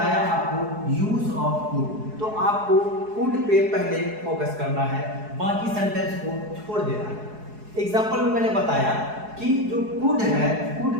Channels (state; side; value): late; left; 4.7 ms